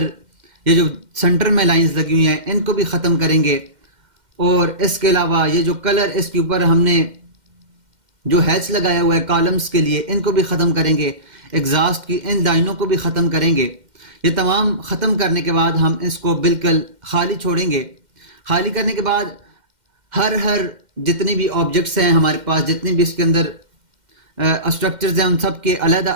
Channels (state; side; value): late; left; 2.1 ms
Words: ये जो सेंटर में लाइंस लगी हुई हैं, इनको भी ख़त्म करेंगे। और इसके अलावा ये जो कलर इसके ऊपर हमने जो हैच लगाया हुआ है कॉलम्स के लिए, इनको भी ख़त्म करेंगे। एग्जॉस्ट की इन लाइनों को भी ख़त्म करेंगे। ये तमाम ख़त्म करने के बाद हम इसको बिल्कुल खाली छोड़ेंगे। खाली करने के बाद हर जितने भी ऑब्जेक्ट्स हैं हमारे पास, जितने भी इसके अंदर स्ट्रक्चर्स हैं, उन सब के